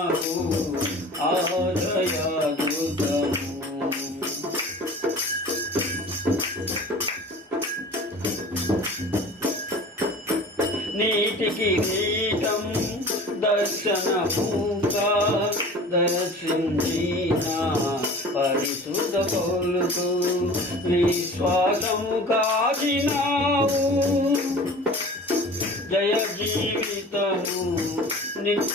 ఆశ్రయ దుర్గము నీటికి నీటం దర్శనముగా దర్శించిన పరిశుద్ధ పౌలుకు విశ్వాసము కాచినావు జయ జీవితము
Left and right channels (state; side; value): normal; both; correlation 0.41